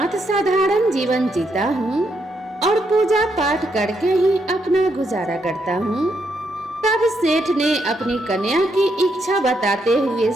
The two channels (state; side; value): normal; both; correlation 0.78